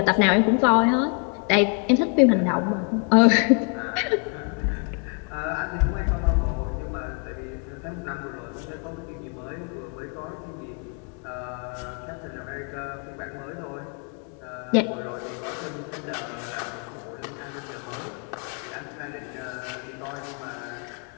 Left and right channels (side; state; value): right; quieter; 37.1 dB